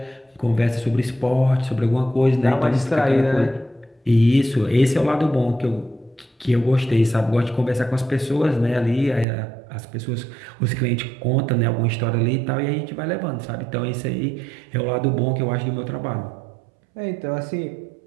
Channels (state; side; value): drops out; left; at 9.2 s